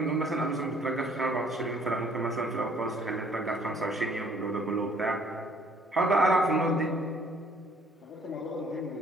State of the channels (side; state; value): both; normal; correlation 0.60